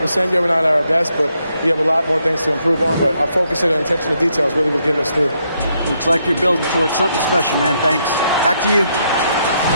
yet. We're not at our best, but we have a lot more things to improve on. But our focus and attention to details really was getting us through. Looks like you're building towards something special, man. Thanks. Back to you.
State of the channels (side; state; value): both; inverted; correlation -0.76